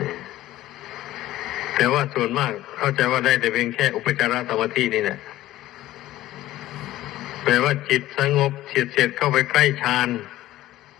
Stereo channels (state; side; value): quieter; right; 15.2 dB